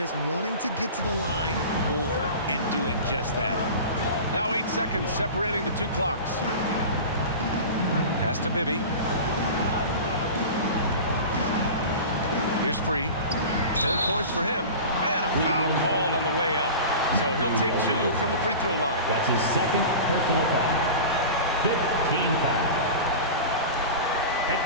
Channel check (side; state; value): both; inverted; correlation -0.33